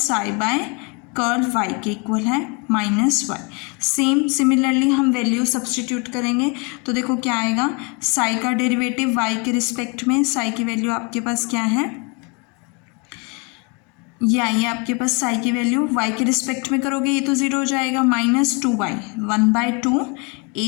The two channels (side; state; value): right; quieter; 31.8 dB